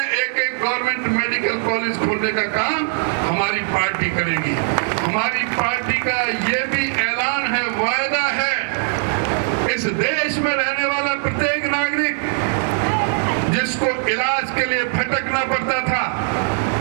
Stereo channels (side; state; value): left; silent; 62 dB below the other